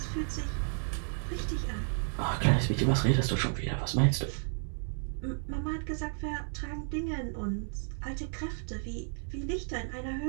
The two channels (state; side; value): silent; left; 56 dB below the other